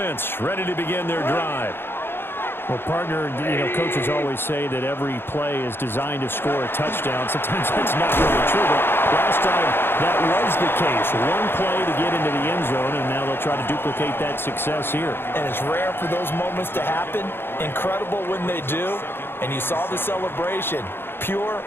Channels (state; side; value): late; right; 0.11 ms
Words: ready to begin their drive. Well, partner, coaches always say that every play is designed to score a touchdown. Sometimes that's not really true, but last time that was the case. One play to get into the end zone, and now they'll try to duplicate that success here. And it's rare for those moments to happen. Incredible when they do. And you saw the celebration. Pure,